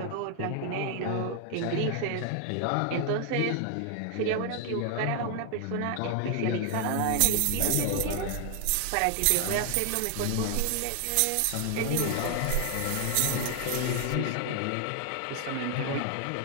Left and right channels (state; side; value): different; both; correlation 0.00